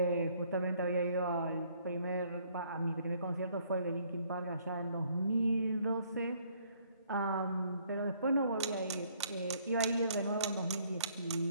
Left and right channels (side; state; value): both; inverted; correlation -0.64